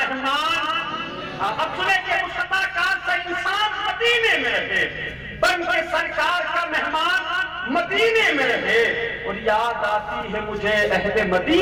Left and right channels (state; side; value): identical; both; correlation 1.00